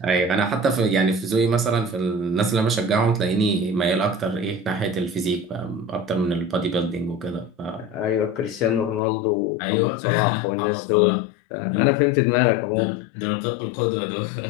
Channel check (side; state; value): right; drops out; at 9.0 s